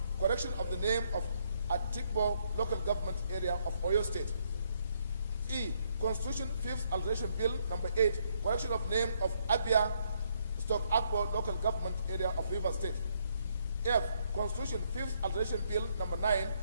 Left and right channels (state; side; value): inverted; both; correlation -0.71